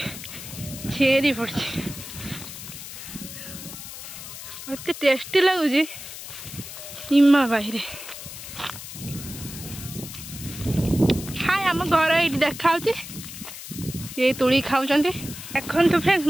मत टेस्टी लगुच इमा बाहर हाय आम घर ये देखा ये तुड़ी खाऊँ देखो तो फ्रेंड्स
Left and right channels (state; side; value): noise; left; hiss, 11 dB below the sound